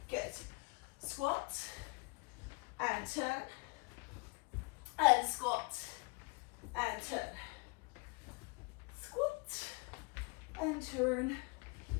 Good. Squat, and turn. And squat, and turn. Squat, and turn.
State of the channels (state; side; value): quieter; right; 29.4 dB